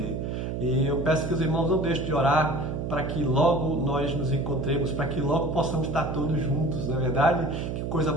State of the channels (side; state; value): right; noise; hum, 3 dB below the sound